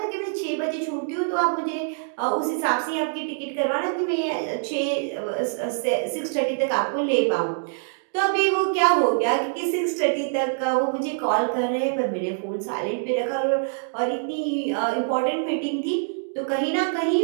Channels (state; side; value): silent; left; digital silence